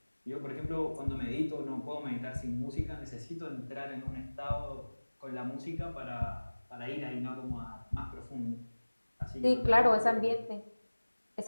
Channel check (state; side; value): inverted; both; correlation -1.00